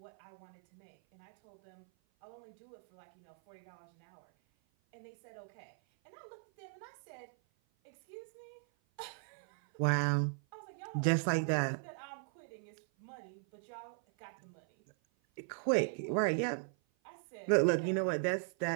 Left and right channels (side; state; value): left; silent; 52 dB below the other